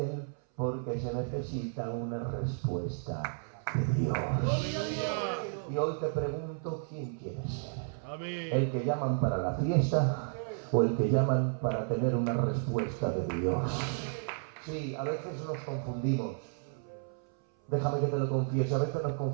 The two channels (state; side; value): silent; left; 56 dB below the other